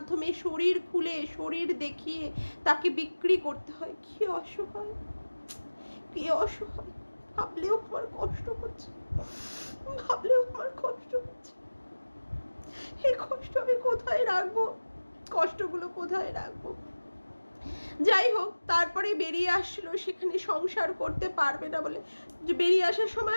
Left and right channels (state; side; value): inverted; both; correlation -1.00